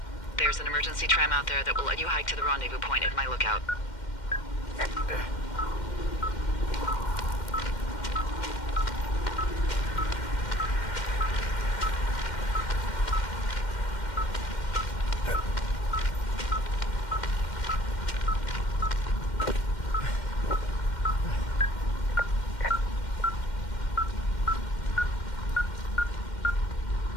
There's an emergency tram out there that will let you hike to the rendezvous point at my lookout.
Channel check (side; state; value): right; late; 2.1 ms